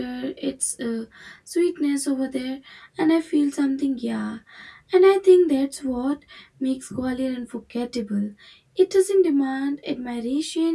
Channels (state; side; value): identical; both; correlation 1.00